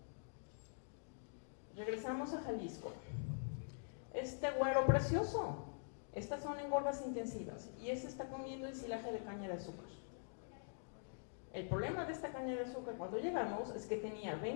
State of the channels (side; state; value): right; silent; digital silence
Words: Regresamos a Jalisco. Este güero precioso, estas son engordas intensivas y este está comiendo ensilaje de caña de azúcar. El problema de esta caña de azúcar cuando llegamos es que tenía